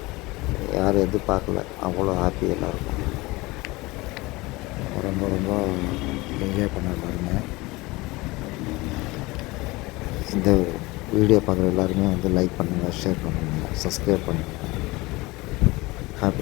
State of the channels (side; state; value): right; quieter; 22.0 dB